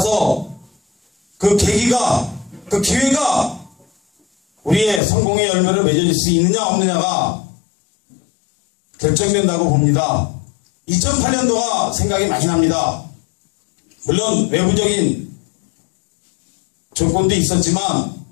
그 계기가, 그 기회가 우리의 성공의 열매를 맺어질 수 있느냐 없느냐가 결정된다고 봅니다. 2008년도가 생각이 많이 납니다. 물론 외부적인 조건도 있었지만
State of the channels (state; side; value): drops out; right; at 5.0 s